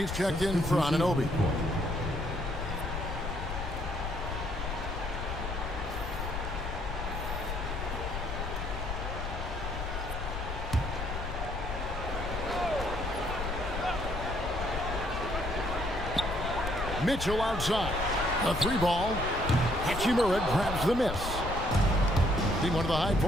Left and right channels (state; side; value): noise; left; rumble, 5 dB below the sound